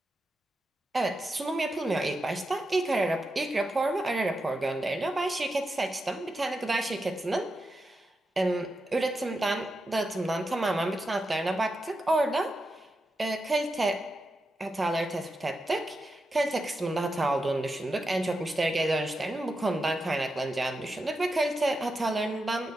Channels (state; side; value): normal; both; correlation 0.88